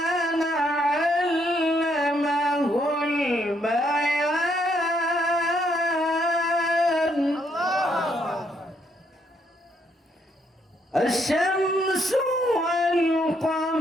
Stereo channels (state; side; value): normal; both; correlation 0.73